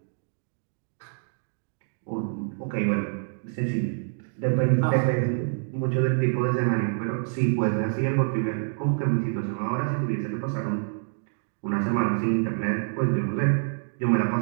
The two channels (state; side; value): silent; left; digital silence